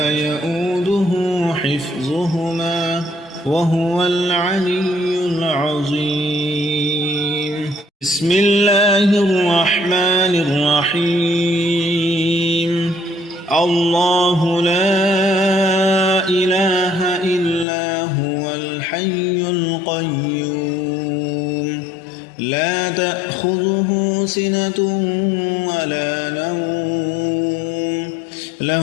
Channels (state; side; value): drops out; right; at 17.7 s